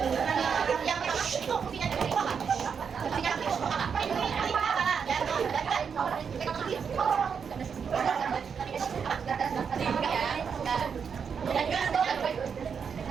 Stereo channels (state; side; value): quieter; left; 6.6 dB